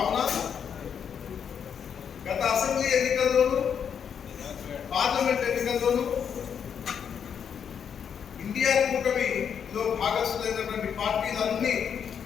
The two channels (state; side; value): quieter; right; 7.6 dB